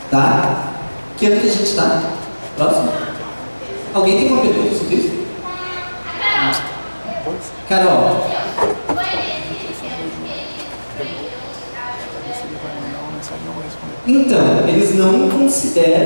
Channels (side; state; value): both; inverted; correlation -1.00